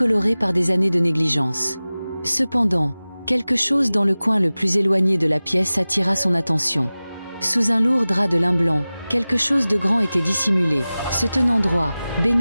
par des années de négligence. Cependant, quelque chose dans le coin le plus éloigné de la pièce attira son attention. Sous un lourd drap de lin blanc, quelque chose de grand était dissimulé, se tenant droit,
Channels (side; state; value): both; inverted; correlation -0.97